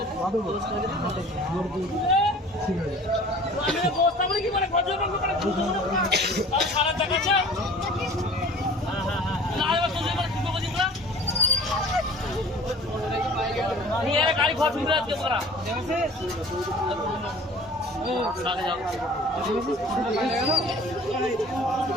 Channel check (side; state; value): both; normal; correlation 0.46